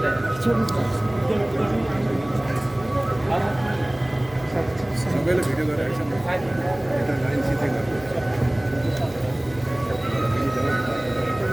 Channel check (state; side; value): noise; right; hum, 21 dB below the sound